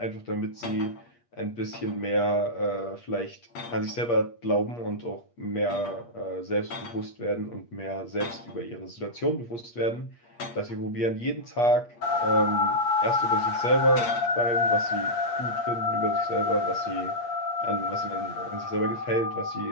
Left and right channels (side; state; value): right; late; 8.5 ms